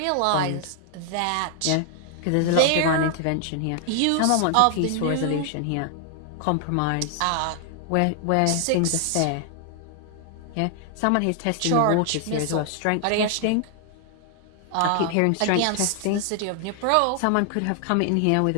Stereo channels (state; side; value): different; both; correlation 0.00